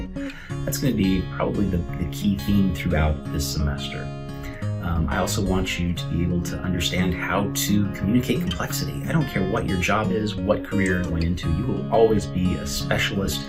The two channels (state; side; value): identical; both; correlation 1.00